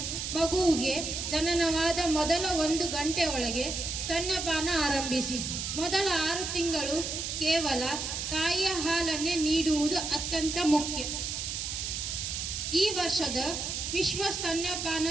ಮಗುವಿಗೆ ಜನನವಾದ ಮೊದಲ 1 ಗಂಟೆ ಒಳಗೆ ಸ್ತನ್ಯಪಾನ ಆರಂಭಿಸಿ. ಮೊದಲ 6 ತಿಂಗಳು ಕೇವಲ ತಾಯಿಯ ಹಾಲನ್ನೇ ನೀಡುವುದು ಅತ್ಯಂತ ಮುಖ್ಯ. ಈ ವರ್ಷದ ವಿಶ್ವ ಸ್ತನ್ಯಪಾನ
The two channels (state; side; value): noise; right; hiss, 3 dB below the sound